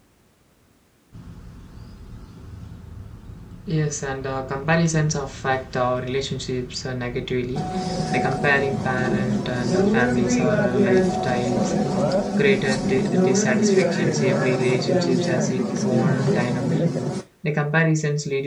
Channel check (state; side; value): identical; both; correlation 1.00